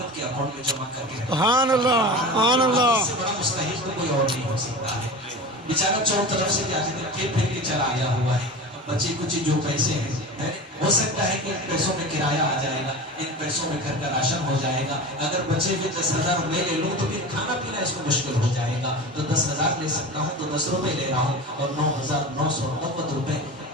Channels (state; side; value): normal; both; correlation 0.31